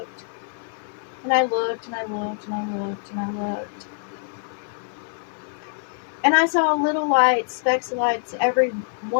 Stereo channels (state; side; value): silent; right; 61 dB below the other